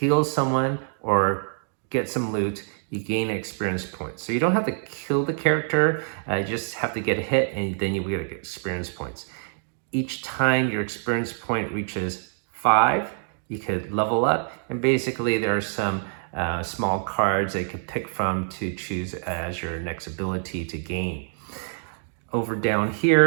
someone, or get some loot, you gain experience points. So you don't have to kill the character, you just have to get a hit, and then you get experience points. Each time your experience point reaches 5, you could level up, and basically there are some small cards that you can pick from to choose as your next ability to gain. Over down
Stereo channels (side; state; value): left; silent; digital silence